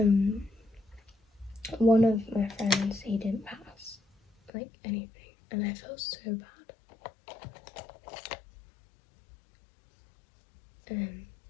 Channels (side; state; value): right; drops out; at 4.5 s